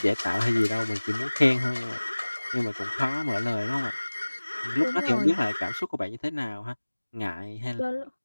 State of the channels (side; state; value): both; inverted; correlation -1.00